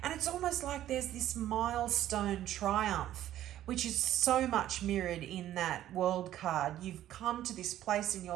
And it's almost like there's this milestone triumph, which is so much mirrored in that world card. You've come to this place in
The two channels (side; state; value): left; quieter; 12.7 dB